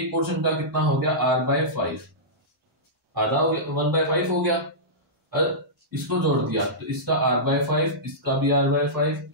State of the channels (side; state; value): both; normal; correlation -0.15